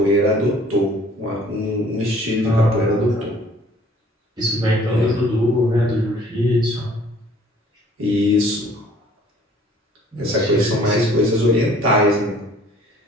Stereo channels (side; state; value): both; normal; correlation 0.55